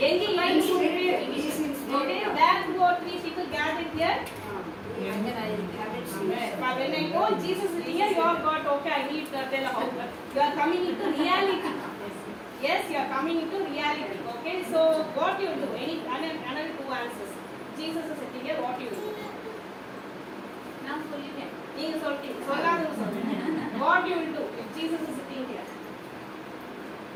எங்க lines okay, where two or three people gathered here. But when I go, Jesus is here, you are God. Okay, I need to tell how you are coming into reality. Yes, you are coming into reality. Okay, so what you do? Another two answers. Jesus is sitting here. What you do? நான் சொல்லிட்டேன். நீங்க சொல்றீங்க, சொல்லாத சொல்லுங்க. What you will do if Jesus is sitting here?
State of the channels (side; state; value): both; identical; correlation 1.00